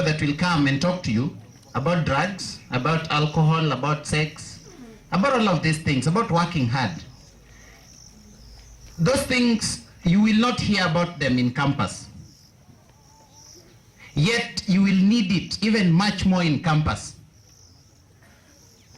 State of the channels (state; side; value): identical; both; correlation 1.00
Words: that will come and talk to you about drugs, about alcohol, about sex, about all of these things, about working hard. Those things, you will not hear about them in campus. Yet you will need it even much more in campus.